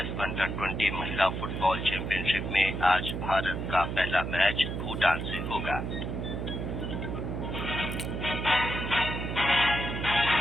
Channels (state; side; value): noise; right; hum, 4 dB below the sound